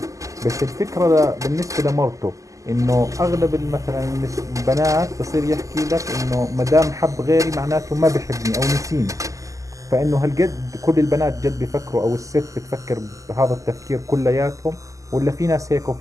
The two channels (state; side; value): late; left; 0.16 ms